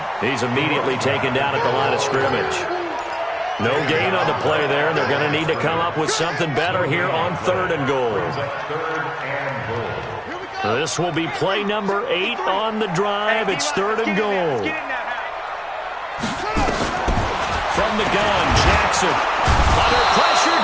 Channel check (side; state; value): both; identical; correlation 1.00